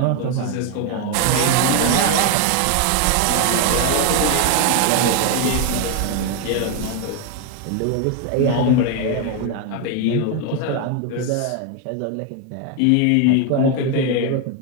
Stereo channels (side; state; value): both; different; correlation 0.01